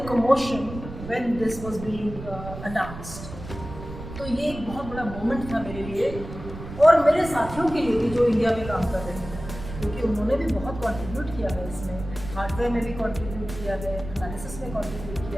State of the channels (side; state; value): right; noise; rumble, 11 dB below the sound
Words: commotion when this was being announced. तो ये एक बहुत बड़ा मोमेंट था मेरे लिए और मेरे साथियों के लिए भी जो इंडिया में काम कर रहे हैं, क्योंकि उन्होंने भी बहुत कंट्रीब्यूट किया है इसमें, हार्डवेयर में भी कंट्रीब्यूट किया है, एनालिसिस में कंट्रीब्यूट